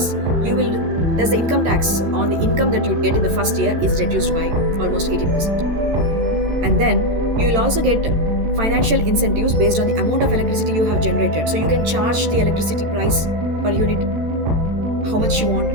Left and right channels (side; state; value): left; late; 13 ms